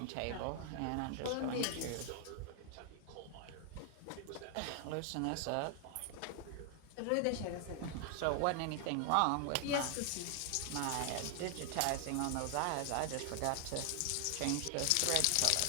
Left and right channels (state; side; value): different; both; correlation 0.00